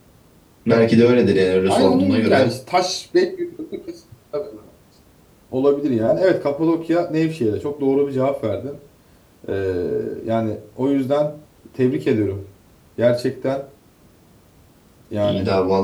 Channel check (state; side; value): identical; both; correlation 1.00